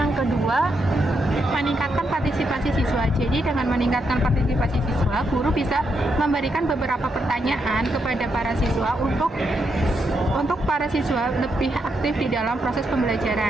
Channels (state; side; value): normal; both; correlation 0.80